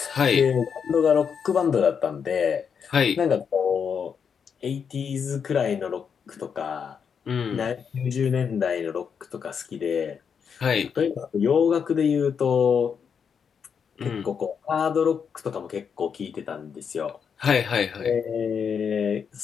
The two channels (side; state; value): right; quieter; 6.8 dB